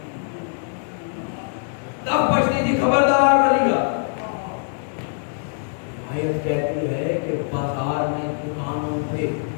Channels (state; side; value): silent; right; digital silence